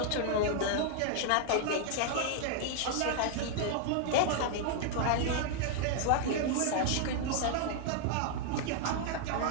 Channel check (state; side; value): different; both; correlation 0.00